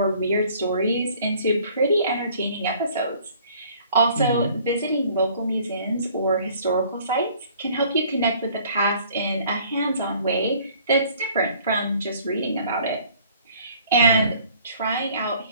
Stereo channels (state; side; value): inverted; both; correlation -0.55